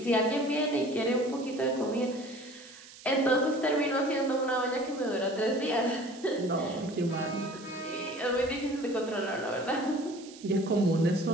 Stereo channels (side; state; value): right; noise; hiss, 19 dB below the sound